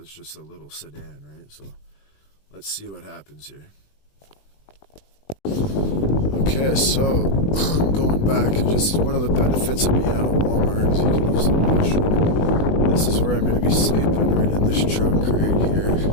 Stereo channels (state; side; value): late; right; 20 ms